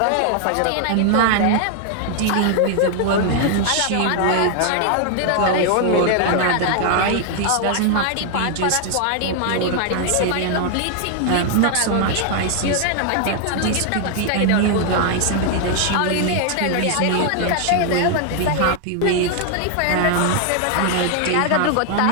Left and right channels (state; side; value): different; both; correlation 0.00